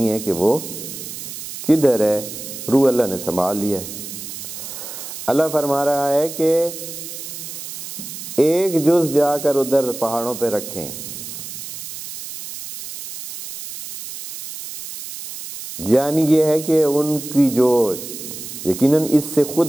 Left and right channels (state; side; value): noise; right; hiss, 10 dB below the sound